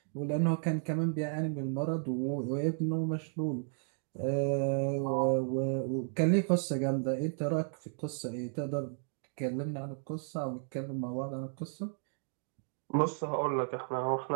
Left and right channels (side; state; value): left; silent; 55 dB below the other